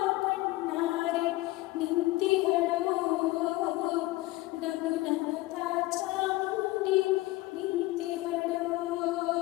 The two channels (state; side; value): quieter; right; 19.1 dB